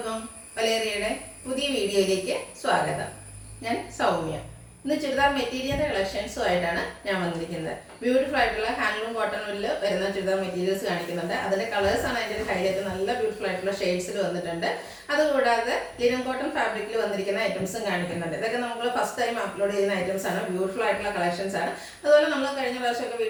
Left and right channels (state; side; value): identical; both; correlation 1.00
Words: വലേറിയയുടെ പുതിയ വീഡിയോയിലേക്ക് സ്വാഗതം. ഞാൻ സൗമ്യ. ഇന്ന് ചുരിദാർ മെറ്റീരിയലിൻ്റെ കളക്ഷൻസുമായിട്ടാണ് ഞാൻ വന്നിരിക്കുന്നത്. ബ്യൂട്ടിഫുൾ ആയിട്ടുള്ള ഹാൻഡ്ലൂം കോട്ടണിൽ വരുന്ന ചുരിദാർ മെറ്റീരിയൽസ് കാണിക്കുന്നുണ്ട്. അതിൻ്റെ കളേഴ്സാണ് അതിൻ്റെ ഒരു ഹൈലൈറ്റ്. നല്ല ബ്യൂട്ടിഫുൾ ആയിട്ടുള്ള ഷെയ്ഡ്സിൽ വന്നിട്ടുണ്ട്. അതുകൂടാതെ ലിനൻ കോട്ടൺ ഫാബ്രിക്കിൽ വന്നിരിക്കുന്ന ഐറ്റംസും കാണിക്കുന്നുണ്ട്. ഇതൊക്കെ നമ്മൾ ഫസ്റ്റ് ടൈം അപ്ലോഡ് ചെയ്യുന്ന ഐറ്റംസ് ആണ്. ബ്യൂട്ടിഫുൾ ആയിട്ടുള്ള കളക്ഷൻസ് ആണ്. അതുപോലെ നമ്മൾ കഴിഞ്ഞ പ്രാവശ്യമൊക്കെ